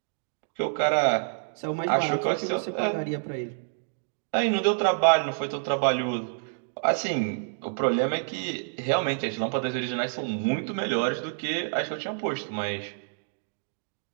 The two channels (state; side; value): silent; left; digital silence